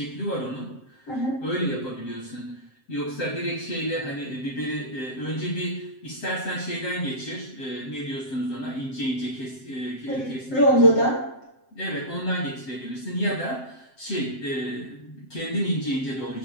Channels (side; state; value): right; late; 7.6 ms